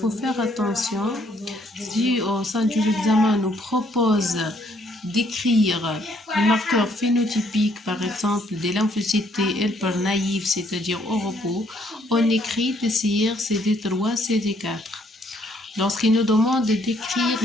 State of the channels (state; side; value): normal; both; correlation 0.67